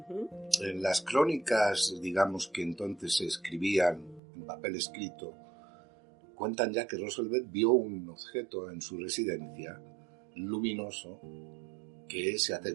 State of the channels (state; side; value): drops out; left; at 4.2 s